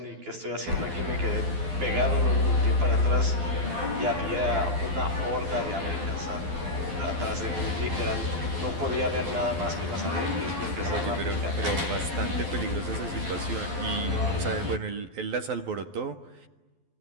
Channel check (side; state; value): left; late; 12 ms